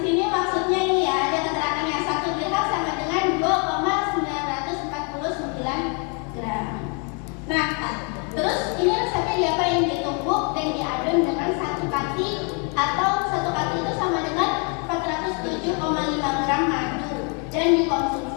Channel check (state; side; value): quieter; right; 36.9 dB